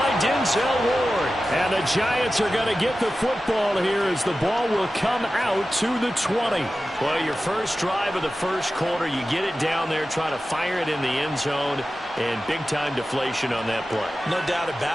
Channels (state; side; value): normal; both; correlation 0.94